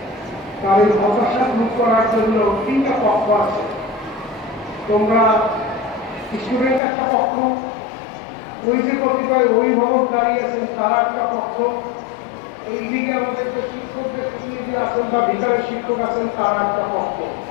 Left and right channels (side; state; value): right; drops out; at 6.8 s